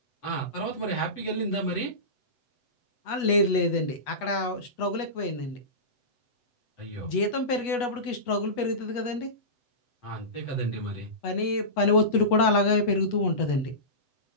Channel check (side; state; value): right; late; 8.2 ms